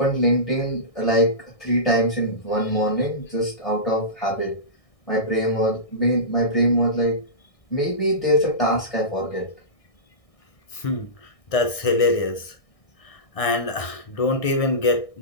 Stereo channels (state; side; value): late; right; 1.6 ms